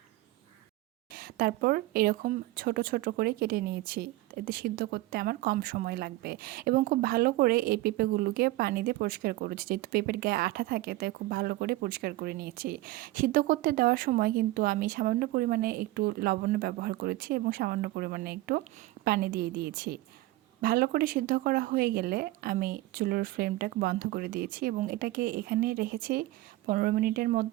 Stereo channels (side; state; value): left; quieter; 17.9 dB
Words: তারপর এরকম ছোট ছোট করে কেটে নিয়েছি। এতে সিদ্ধ করতে আমার কম সময় লাগবে এবং খুব ভালো করে এই পেঁপেগুলোকে পানি দিয়ে পরিষ্কার করেছি। যেহেতু পেঁপের গায়ে আঠা থাকে তাই খুব ভালো করে পরিষ্কার করে নিয়েছি। সিদ্ধ করতে দেওয়ার সময় কিন্তু আমি সামান্য পরিমাণে একটু লবণ ব্যবহার করেছি এবং সামান্য পরিমাণে একটু পানি দিয়ে দিয়েছি। ভালো করে সিদ্ধ করা হয়ে গেলে আমি চুলোর ফ্লেমটাকে বন্ধ করে দিয়েছি এবং এটাকে এখানে রেখেছি 15 মিনিটের